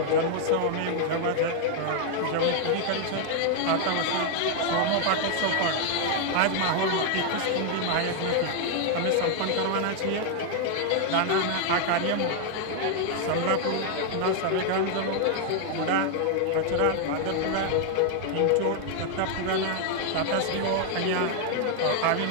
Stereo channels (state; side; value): different; both; correlation 0.00